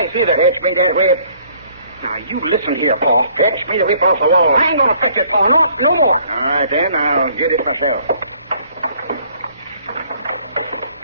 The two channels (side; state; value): both; inverted; correlation -0.60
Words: neither. Fetch me that whip. Now, you listen here, Pa. Fetch me the whip off the wall. I ain't going to fetch it, Pa. No more. All right, then. I'll get it myself.